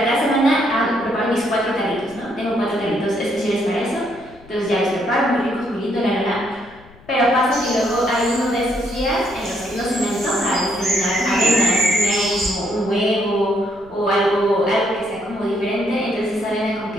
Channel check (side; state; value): left; noise; rumble, 24 dB below the sound